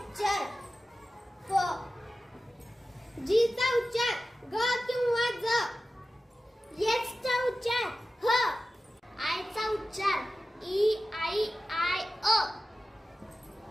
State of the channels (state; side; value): normal; both; correlation 0.95